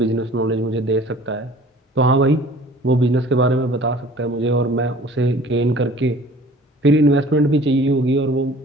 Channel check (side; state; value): both; normal; correlation 0.49